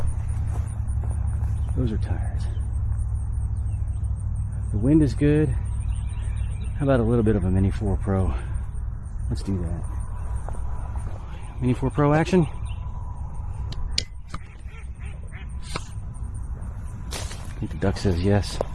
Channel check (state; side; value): identical; both; correlation 1.00